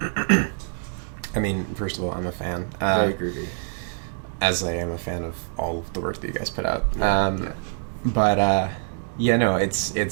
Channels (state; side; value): silent; left; 62 dB below the other